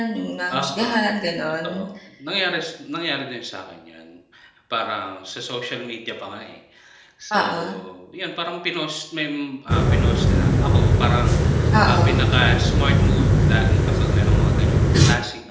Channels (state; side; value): identical; both; correlation 1.00